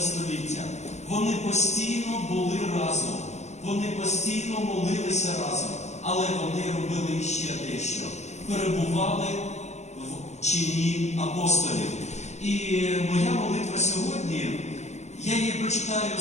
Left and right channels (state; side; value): late; right; 0.33 ms